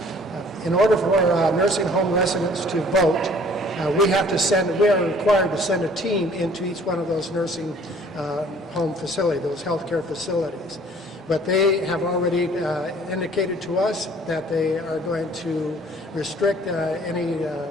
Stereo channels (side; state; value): both; normal; correlation 0.54